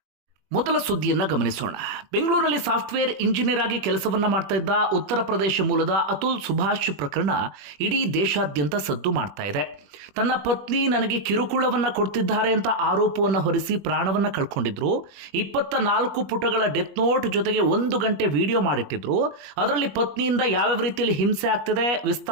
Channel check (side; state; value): left; late; 21 ms